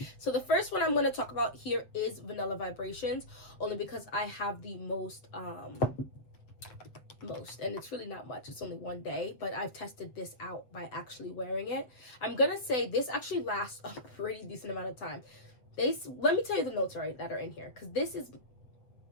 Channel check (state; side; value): late; right; 7.7 ms